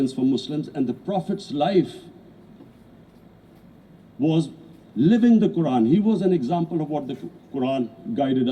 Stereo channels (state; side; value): identical; both; correlation 1.00